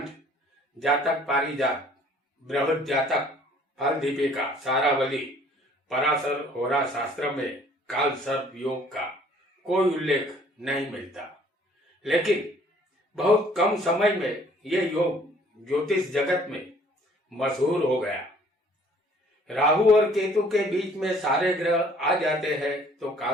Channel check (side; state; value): both; normal; correlation 0.57